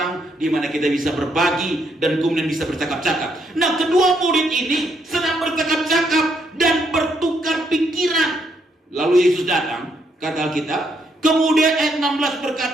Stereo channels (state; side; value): normal; both; correlation 0.75